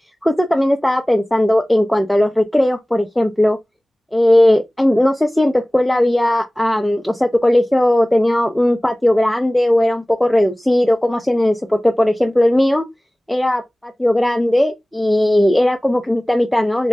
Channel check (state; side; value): normal; both; correlation 0.98